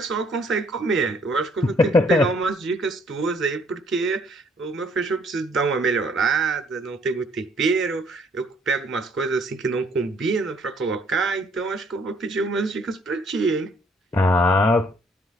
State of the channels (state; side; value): normal; both; correlation 0.63